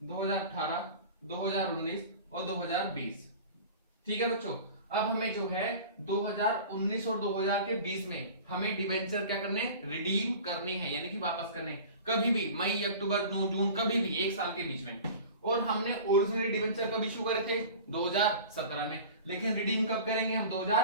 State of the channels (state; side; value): inverted; both; correlation -0.39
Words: 2019 और 2020। ठीक है बच्चों। अब हमें जो है 2019 और 2020 में हमें डिबेंचर क्या करने, रिडीम करने हैं, यानी कि वापस करने, कभी भी मई, अक्टूबर, जून, कभी भी एक साल के बीच में। और हमने ओरिजिनली डिबेंचर कब इशू करे थे, 2017 में, लेकिन रिडीम कब करेंगे हम,